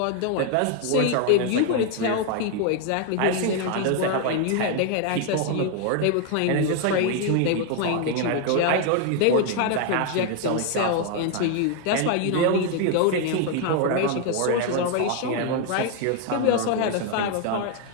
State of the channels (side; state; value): both; different; correlation 0.00